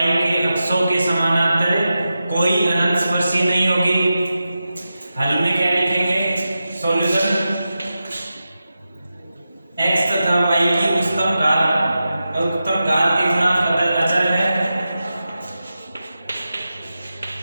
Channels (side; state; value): both; inverted; correlation -0.91